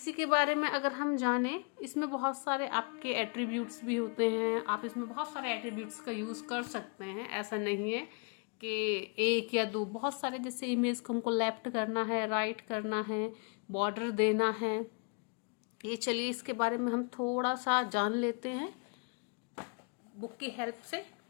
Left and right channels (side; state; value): right; quieter; 37.1 dB